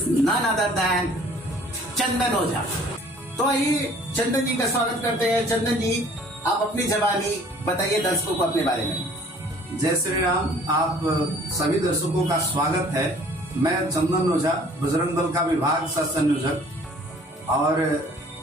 none other than Chandan Ojha. तो आइए चंदन जी का स्वागत करते हैं। चंदन जी, आप अपनी जबानी बताइए दर्शकों को अपने बारे में। जय श्री राम। आप सभी दर्शकों का स्वागत है। मैं चंदन ओझा, बजरंग दल का विभाग सह संयोजक, और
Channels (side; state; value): both; normal; correlation 0.53